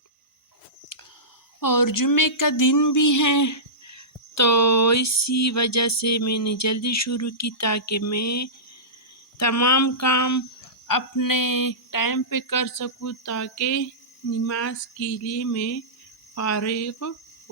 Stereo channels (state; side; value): normal; both; correlation -0.19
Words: और जुम्मे का दिन भी है, तो इसी वजह से मैंने जल्दी शुरू की ताकि मैं तमाम काम अपने टाइम पे कर सकूँ, ताकि नमाज के लिए मैं फारिग